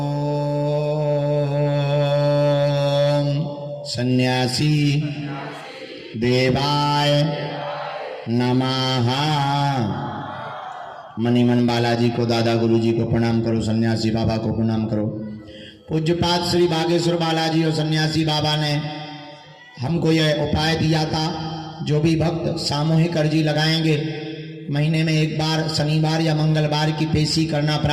सन्यासी देवाय नमः। मनीमन बालाजी को, दादा गुरुजी को प्रणाम करो, सन्यासी बाबा को प्रणाम करो। पूज्यपाद श्री बागेश्वर बालाजी और सन्यासी बाबा ने हमको यह उपाय दिया था, जो भी भक्त सामूहिक अर्जी लगाएंगे, महीने में एक बार शनिवार या मंगलवार की पेशी करना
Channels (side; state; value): both; identical; correlation 1.00